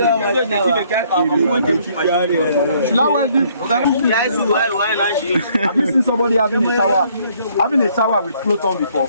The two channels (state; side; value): inverted; both; correlation -0.64